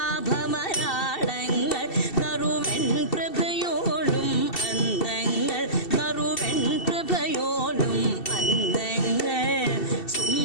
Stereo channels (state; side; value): late; right; 2.7 ms